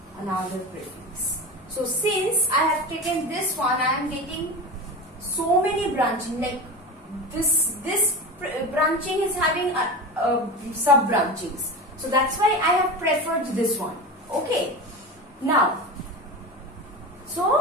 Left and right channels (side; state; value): both; normal; correlation 0.27